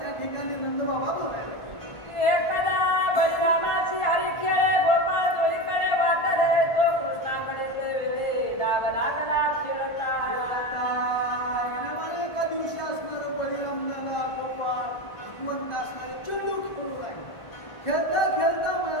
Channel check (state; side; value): late; right; 1.4 ms